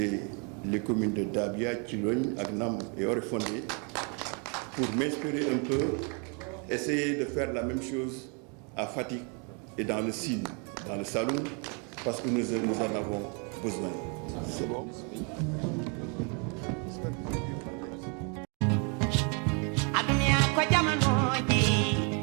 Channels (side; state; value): left; quieter; 35.7 dB